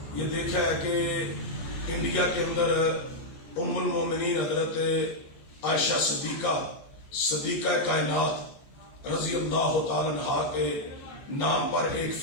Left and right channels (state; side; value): late; right; 14 ms